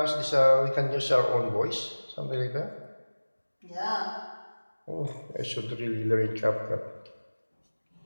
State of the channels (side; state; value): both; inverted; correlation -1.00